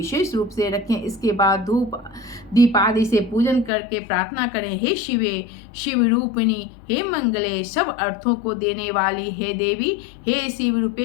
रूप से रखें। इसके बाद धूप दीप आदि से पूजन करके प्रार्थना करें, हे शिवे, शिव रूपिणी, हे मंगले, सब अर्थों को देने वाली, हे देवी, हे शिव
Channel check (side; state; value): right; drops out; at 3.7 s